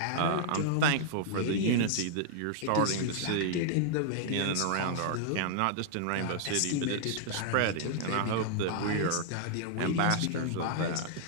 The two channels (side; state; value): both; different; correlation -0.01